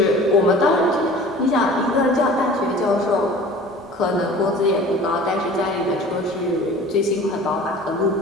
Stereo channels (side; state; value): both; normal; correlation 0.43